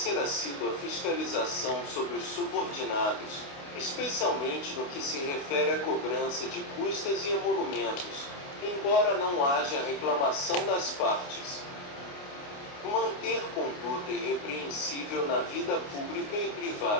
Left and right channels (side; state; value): right; late; 28 ms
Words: assídua fiscalização sobre os subordinados, especialmente no que se refere à cobrança de custas e emolumentos, embora não haja reclamação das partes. Manter conduta irrepreensível na vida pública e